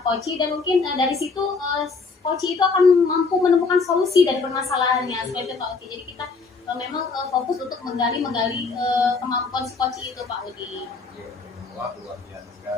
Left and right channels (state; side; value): quieter; right; 4.4 dB